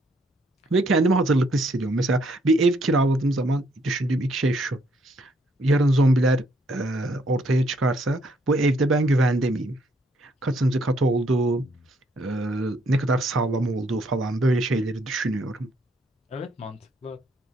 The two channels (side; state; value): both; normal; correlation 0.69